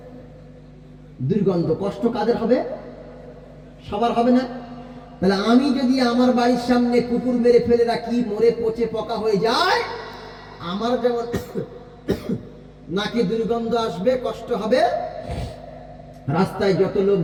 দুর্গন্ধ। কষ্ট কাদের হবে? সবার হবে না? তাহলে আমি যদি আমার বাড়ির সামনে কুকুর মেরে ফেলে রাখি, মরে পচে পোকা হয়ে যায়, আমার যেমন নাকি দুর্গন্ধ আসবে, কষ্ট হবে, রাস্তায় যত লোক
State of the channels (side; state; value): both; identical; correlation 1.00